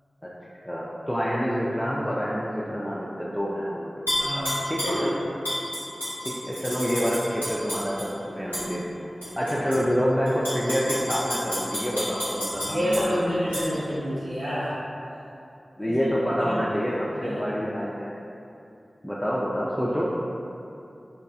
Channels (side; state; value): both; normal; correlation 0.96